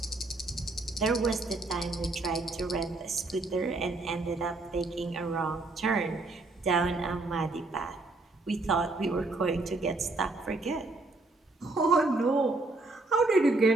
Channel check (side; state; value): left; quieter; 3.1 dB